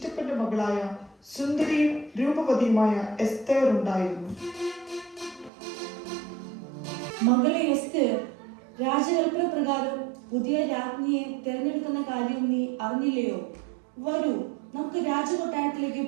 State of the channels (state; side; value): drops out; left; at 5.5 s